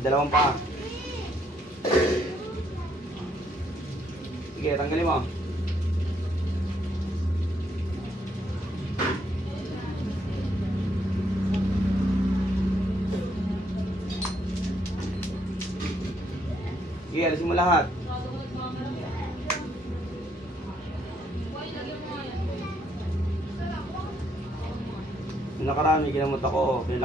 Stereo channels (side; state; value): both; normal; correlation 0.72